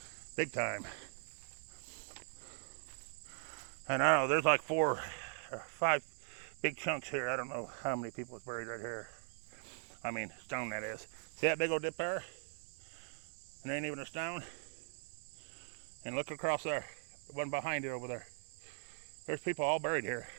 Big time. And I don't know, there's like 4 or 5 big chunks here. I don't know how many people is buried right here. I mean, stone that is. See that big old dip there? And there ain't even a stone. And look across there, the one behind it over there. There's people all buried here.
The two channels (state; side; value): silent; left; digital silence